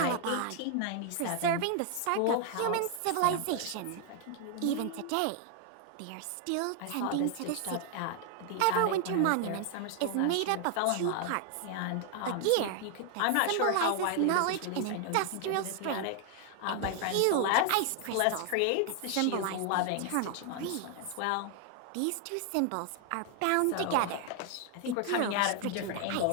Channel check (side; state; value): both; different; correlation 0.00